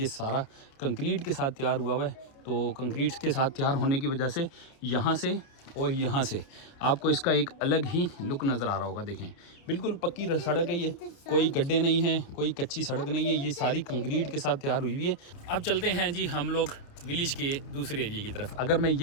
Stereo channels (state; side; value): late; right; 29 ms